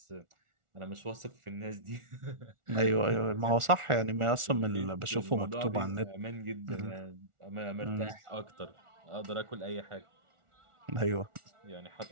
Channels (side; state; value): left; late; 1.4 ms